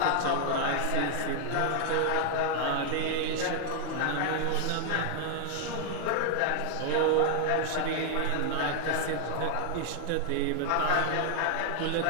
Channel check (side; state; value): both; different; correlation 0.00